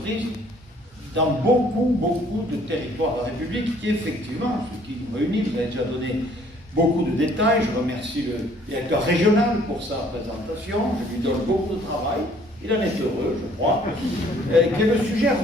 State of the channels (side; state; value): both; normal; correlation 0.59